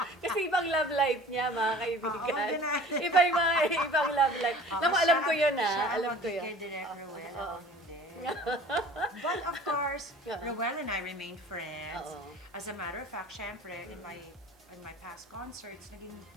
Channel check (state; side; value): normal; both; correlation 0.45